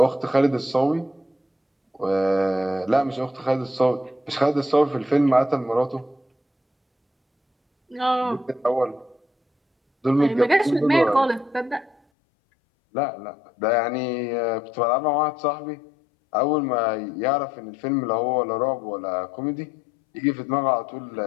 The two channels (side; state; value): right; drops out; at 12.0 s